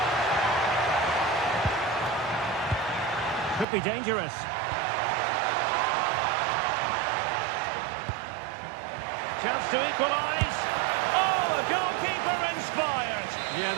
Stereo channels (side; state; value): left; drops out; at 3.7 s